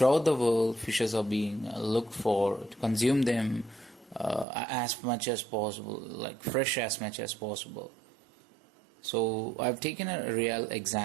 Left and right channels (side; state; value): left; drops out; at 4.5 s